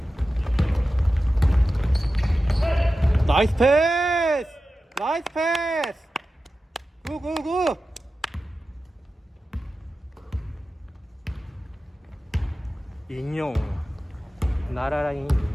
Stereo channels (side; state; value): both; normal; correlation 0.93